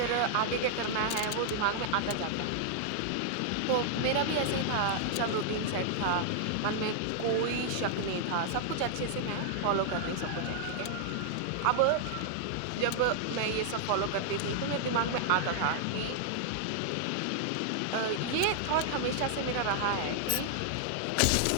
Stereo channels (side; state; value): both; different; correlation -0.01